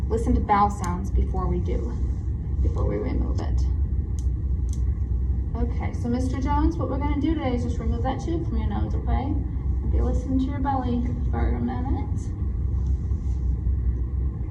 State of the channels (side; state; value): both; identical; correlation 1.00